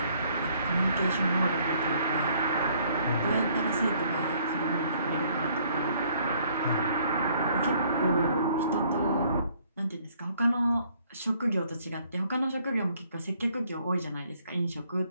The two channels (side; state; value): both; inverted; correlation -0.64